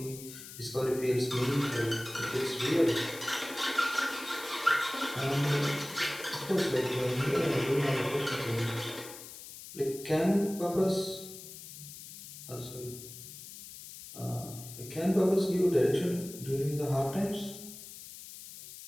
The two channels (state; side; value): noise; left; hiss, 14 dB below the sound